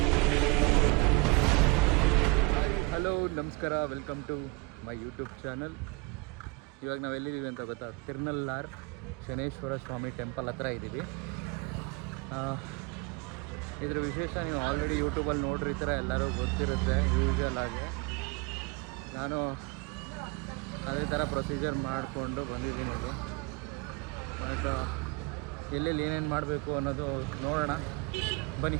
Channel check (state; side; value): quieter; left; 25.9 dB